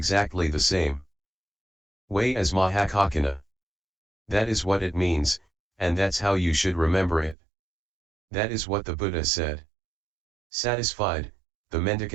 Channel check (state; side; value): drops out; left; at 7.4 s